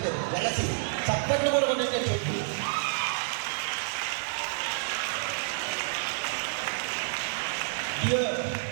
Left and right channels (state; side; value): silent; left; digital silence